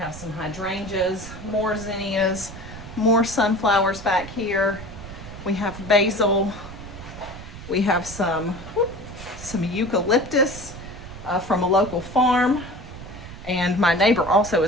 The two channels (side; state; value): right; noise; rumble, 13 dB below the sound